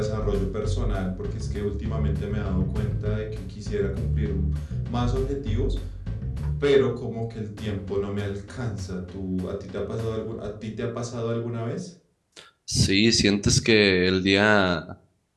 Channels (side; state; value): both; identical; correlation 1.00